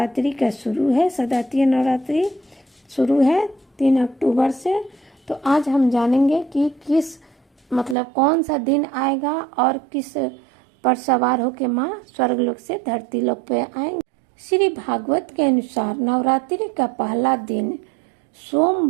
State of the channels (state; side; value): drops out; left; at 8.0 s